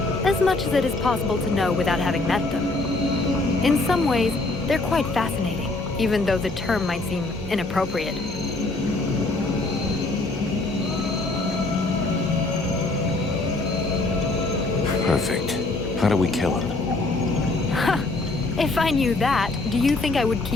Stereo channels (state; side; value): quieter; right; 3.1 dB